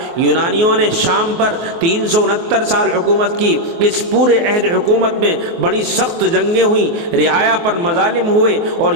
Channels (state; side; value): late; left; 24 ms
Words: یونانیوں نے شام پر 369 سال حکومت کی۔ اس پورے عہد حکومت میں بڑی سخت جنگیں ہوئیں، رعایا پر مظالم ہوئے اور